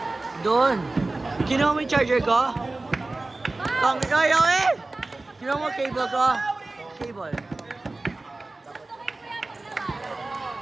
Doon. Kinuha mo yung charger ko? Ayaw eh! Kinuha mo cable ko? Cable.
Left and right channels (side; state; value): left; quieter; 3.1 dB